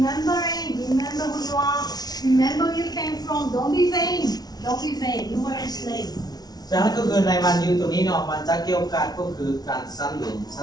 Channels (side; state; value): right; late; 0.19 ms